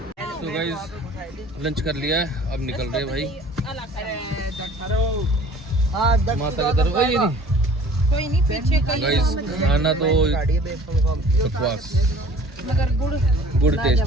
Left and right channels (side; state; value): both; normal; correlation 0.49